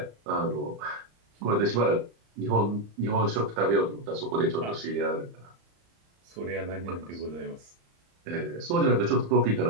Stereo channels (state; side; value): late; left; 35 ms